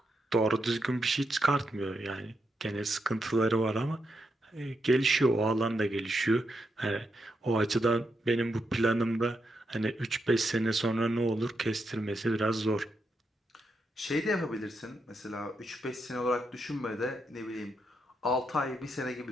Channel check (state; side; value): normal; both; correlation 0.83